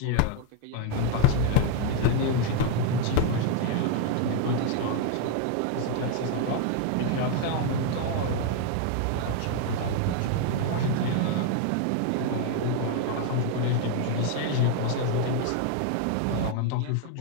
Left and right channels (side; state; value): both; different; correlation 0.01